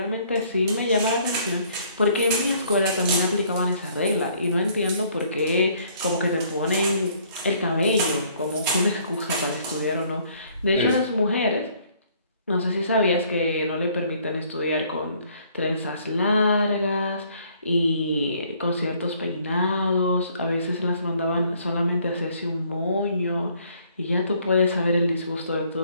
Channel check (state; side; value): inverted; both; correlation -0.62